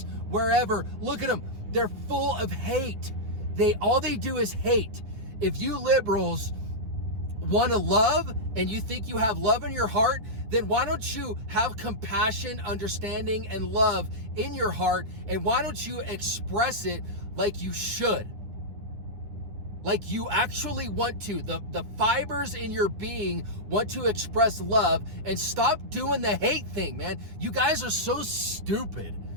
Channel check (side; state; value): left; late; 10 ms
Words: wherever, look at them. They're full of hate. All they do is hate. If you liberals want to love and you think you have love in your heart, then why don't you have compassion, understanding, and love in your heart, and why don't you express it like you should? Like you actually want to. The fibers in your being want to express love, and stop doing the hate thing, man. You guys are so stupid.